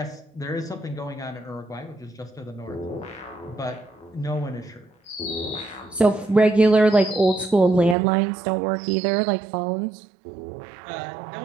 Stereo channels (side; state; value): left; drops out; at 8.0 s